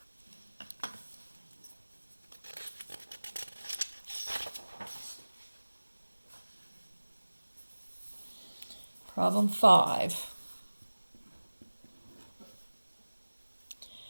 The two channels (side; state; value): both; inverted; correlation -1.00